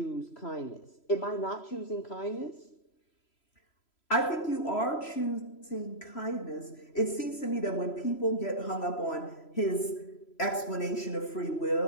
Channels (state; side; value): late; right; 3.0 ms